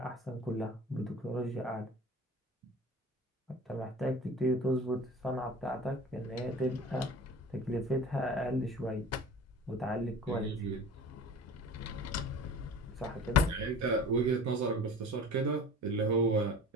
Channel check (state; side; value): normal; both; correlation 0.39